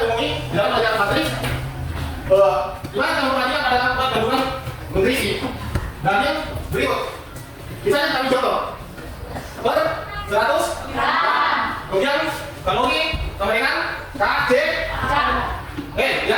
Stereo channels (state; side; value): identical; both; correlation 1.00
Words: ngomongin di dalam pelajaran matris, gimana cara memperhatikan pada tempat gabungan nutrisi dan yang berikut. Misalnya kami contoh per 100 gram, kemudian kalori kemaringan KJ